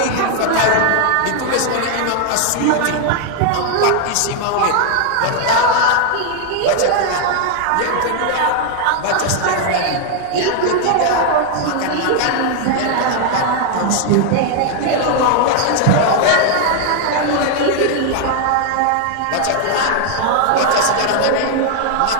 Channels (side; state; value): both; different; correlation 0.00